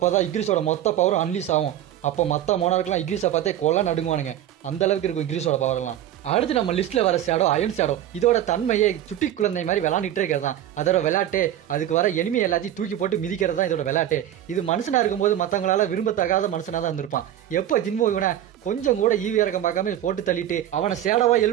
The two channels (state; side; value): quieter; left; 11.7 dB